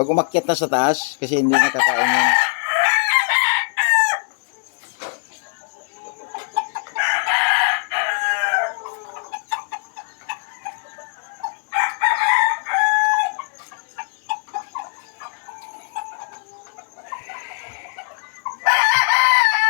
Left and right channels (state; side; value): silent; right; 64 dB below the other